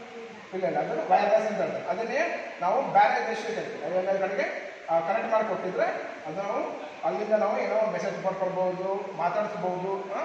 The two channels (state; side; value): identical; both; correlation 1.00